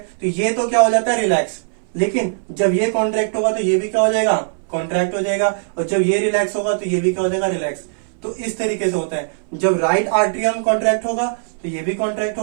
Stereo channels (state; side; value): silent; left; 62 dB below the other